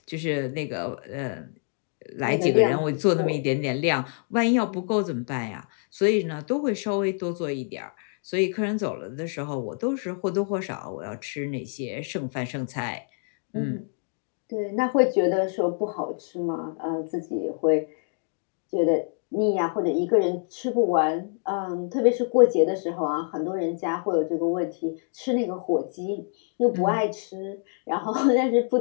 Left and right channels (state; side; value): silent; right; 55 dB below the other